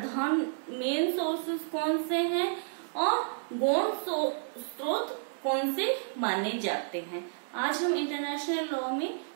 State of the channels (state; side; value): silent; left; digital silence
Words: मेन सोर्सेस कौन से हैं और गौण स्रोत कौन से माने जाते हैं। आज हम इंटरनेशनल लॉ में